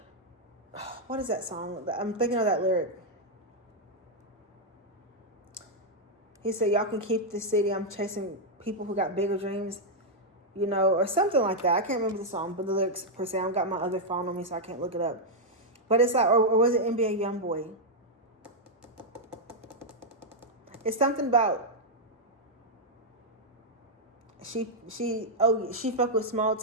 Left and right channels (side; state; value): both; normal; correlation -0.03